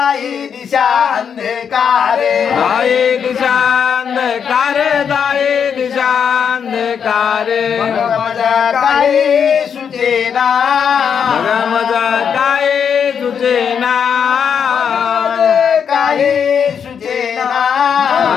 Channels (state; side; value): quieter; right; 7.3 dB